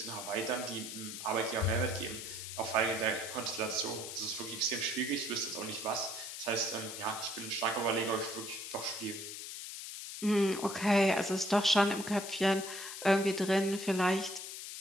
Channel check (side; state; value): left; noise; hiss, 8 dB below the sound